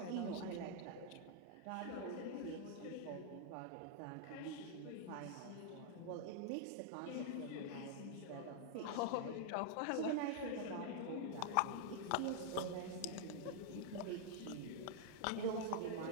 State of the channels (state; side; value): different; both; correlation -0.01